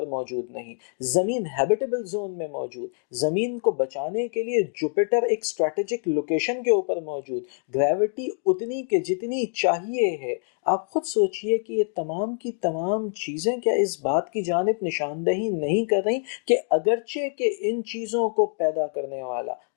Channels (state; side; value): silent; right; digital silence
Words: موجود نہیں، زمین ہیبیٹیبل زون میں موجود، زمین کو بچانے کے لیے جوپیٹر ایک اسٹریٹجک لوکیشن کے اوپر موجود، گریوٹی اتنی کہ جتنی چاہیے ہے۔ آپ خود سوچئے کہ یہ تمام کی تمام چیزیں کیا اس بات کی جانب نشاندہی نہیں کر رہی کہ اگرچہ کہ ان چیزوں کو پیدا کرنے والا